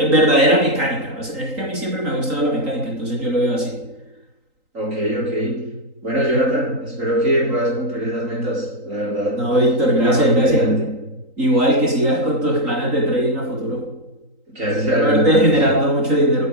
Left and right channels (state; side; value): late; left; 3.9 ms